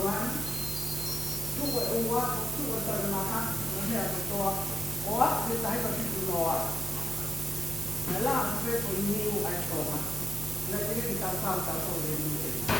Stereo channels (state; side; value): noise; right; hum, 21 dB below the sound